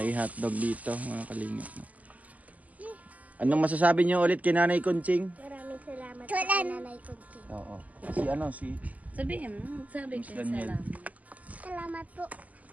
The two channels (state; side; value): late; left; 0.076 ms